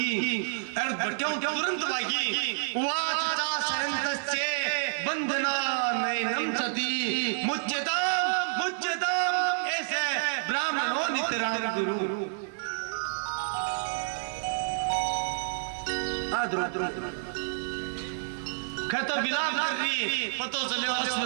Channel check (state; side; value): silent; left; 58 dB below the other